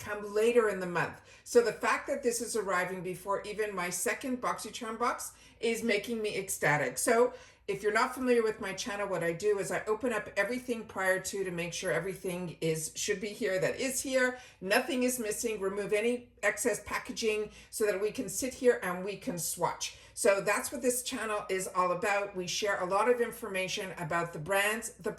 later in the month. So the fact that this is arriving before even my second BoxyCharm box is making me ecstatic. So if you're not familiar with my channel, what I do is I open up everything prior to make sure everything should be here that is here. Nothing is missing. Remove any excess packaging so that we can sit here and we can swatch. So that's what this channel is all about. We share a lot of information about the brands, the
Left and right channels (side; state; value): both; identical; correlation 1.00